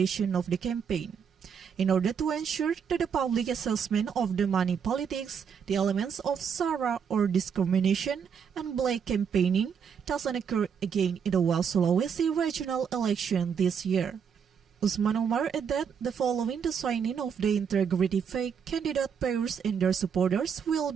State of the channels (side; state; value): left; quieter; 7.0 dB